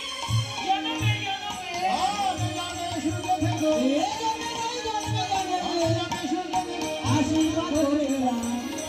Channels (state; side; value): identical; both; correlation 1.00